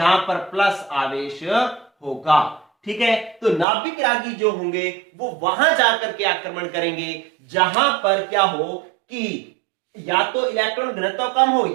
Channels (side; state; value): left; drops out; at 3.7 s